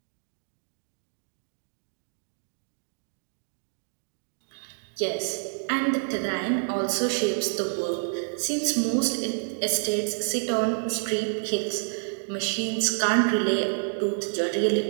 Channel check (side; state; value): left; silent; digital silence